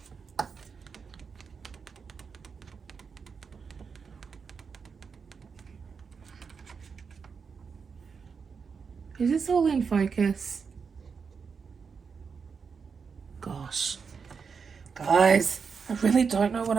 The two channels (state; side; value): quieter; left; 5.7 dB